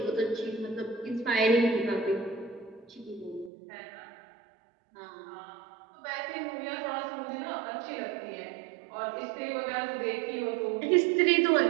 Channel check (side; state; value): left; drops out; at 3.5 s